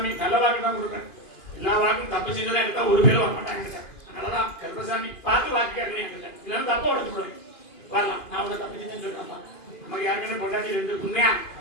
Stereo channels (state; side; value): late; right; 2.5 ms